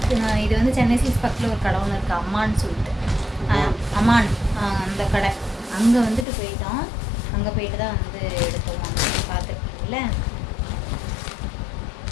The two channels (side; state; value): right; drops out; at 6.2 s